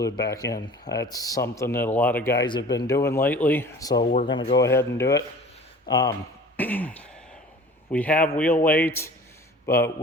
back in. That's something that a lot of guys have been doing lately, so we're going to go ahead and do it. We have wheel weights, but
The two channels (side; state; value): both; normal; correlation 0.44